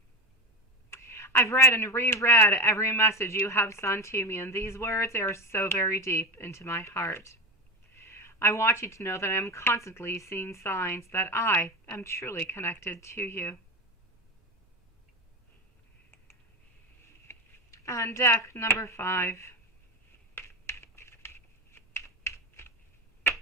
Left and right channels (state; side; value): normal; both; correlation 0.21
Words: I've read and reread every message you have sent to me, and these words are so very deep into my heart. I want you to know that I am constantly seeing signs that I am truly connected to you. And deck number 5.